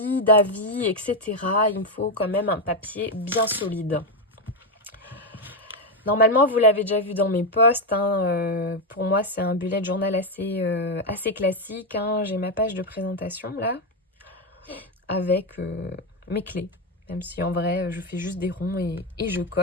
d'avis, etc., il me faut quand même un papier bien solide. Normalement, vous l'avez déjà vu dans mes posts, hein, pour moi, c'est un bullet journal assez classique. Hein. J'ai ma page de présentation, là, avec mes clés. Même si, en vrai, je fais juste des ronds et je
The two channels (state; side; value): normal; both; correlation 0.07